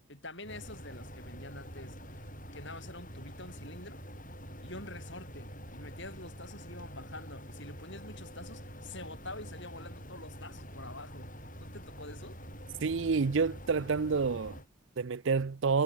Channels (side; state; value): left; quieter; 3.7 dB